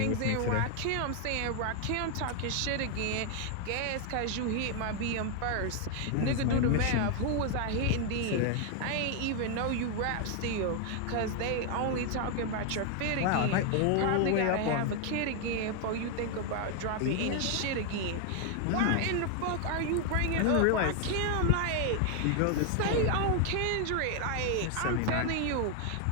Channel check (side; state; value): both; different; correlation 0.00